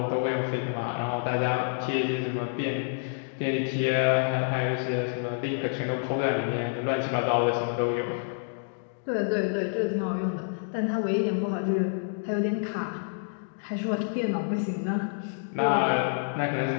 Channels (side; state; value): right; silent; digital silence